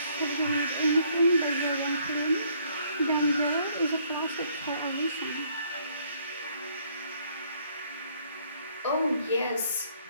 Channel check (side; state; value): both; inverted; correlation -0.66